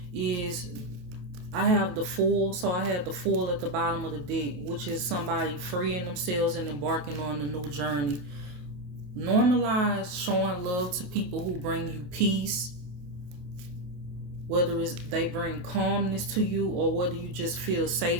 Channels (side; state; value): left; late; 28 ms